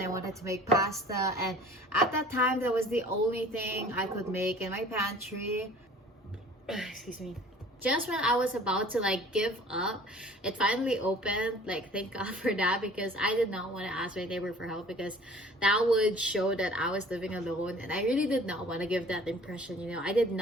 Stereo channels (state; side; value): normal; both; correlation 0.48